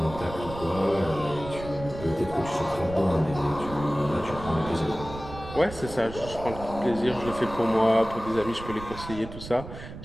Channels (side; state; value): right; noise; rumble, 12 dB below the sound